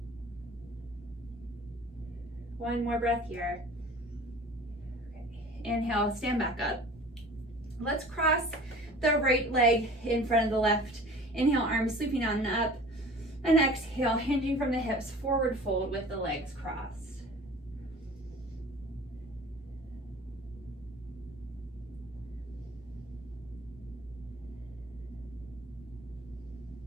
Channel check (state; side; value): normal; both; correlation 0.44